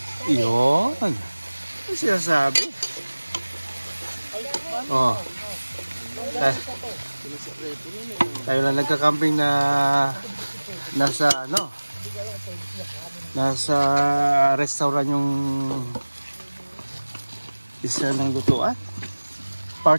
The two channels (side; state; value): both; inverted; correlation -1.00